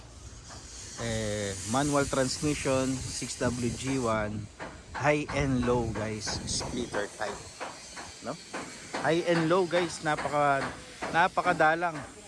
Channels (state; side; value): identical; both; correlation 1.00